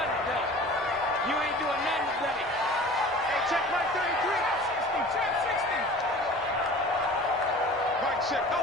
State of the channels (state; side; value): normal; both; correlation 0.42